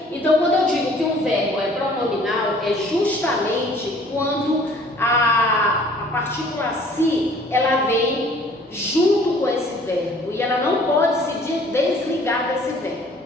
Então, quando eu digo que um verbo é pronominal, é justamente quando a partícula si, ela vem junto com esse verbo, e ela não pode se desligar desse verbo.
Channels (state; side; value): normal; both; correlation 0.54